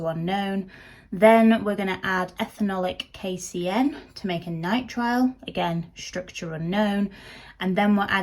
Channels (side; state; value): both; identical; correlation 1.00